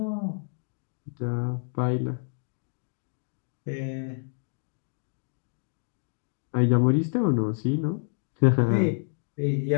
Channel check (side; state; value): right; silent; digital silence